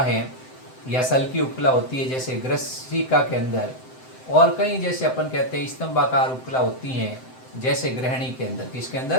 या सल्की उपकला होती है जैसे ग्रसिका के अंदर, और कहीं जैसे अपन कहते हैं स्तंभाकार उपकला होती हैं जैसे ग्रहणी के अंदर। किसके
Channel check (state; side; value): late; right; 7.8 ms